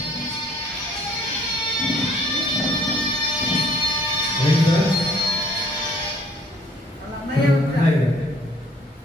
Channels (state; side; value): normal; both; correlation 0.59